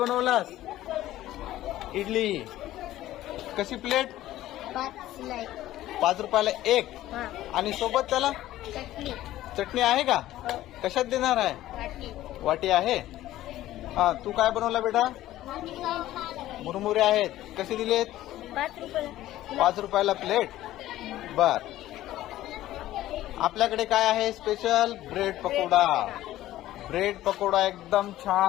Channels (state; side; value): quieter; right; 14.6 dB